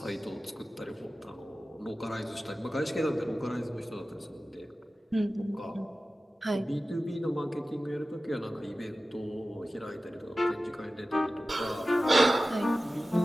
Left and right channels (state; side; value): normal; both; correlation 0.95